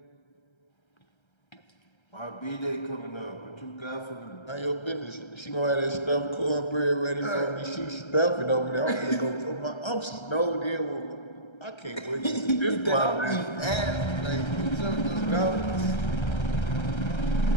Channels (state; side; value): late; right; 1.3 ms